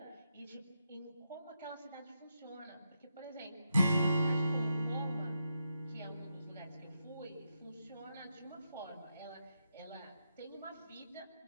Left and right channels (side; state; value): both; inverted; correlation -0.84